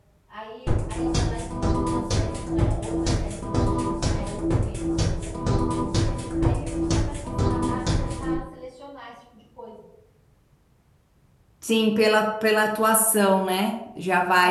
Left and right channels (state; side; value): identical; both; correlation 1.00